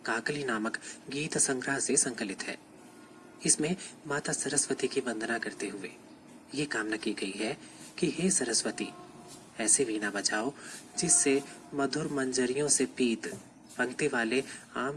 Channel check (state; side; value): identical; both; correlation 1.00